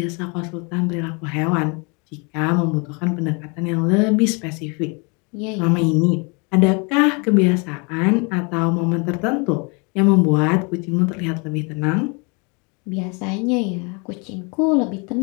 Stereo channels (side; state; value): right; quieter; 32.3 dB